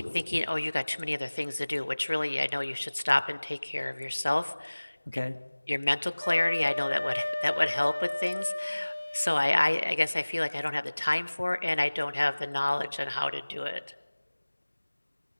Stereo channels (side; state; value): both; inverted; correlation -1.00